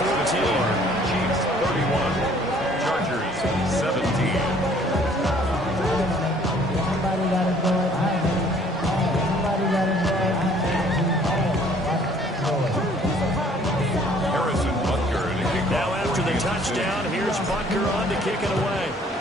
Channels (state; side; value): normal; both; correlation 0.58